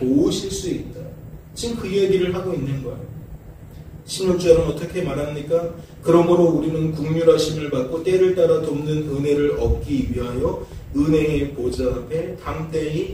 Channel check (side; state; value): both; identical; correlation 1.00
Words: 수 있다. 지금 그 이야기를 하고 있는 거예요. 16절은 어떻게 말합니까? 그러므로 우리는 긍휼하심을 받고 때를 따라 돕는 은혜를 얻기 위하여 은혜의 보좌 앞에